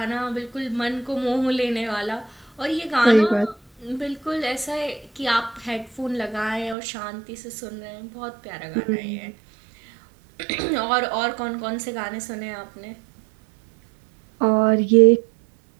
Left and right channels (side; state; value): left; drops out; at 6.8 s